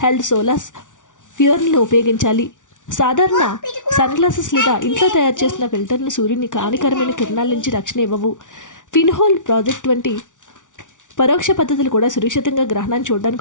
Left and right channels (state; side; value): late; right; 0.87 ms